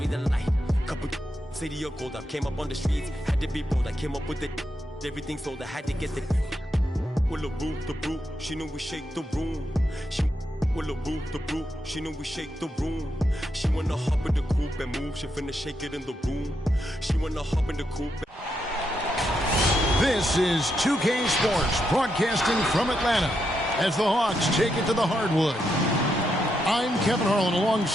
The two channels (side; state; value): both; normal; correlation 0.82